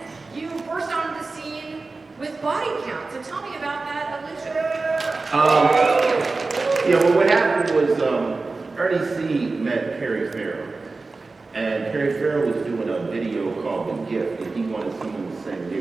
you burst onto the scene with Body Count. So tell me about that, Alicia. Yeah, well, what happened was Ernie C met Perry Farrell. And Perry Farrell was doing a video called The Gift, and he wanted someone to sing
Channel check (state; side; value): quieter; left; 3.7 dB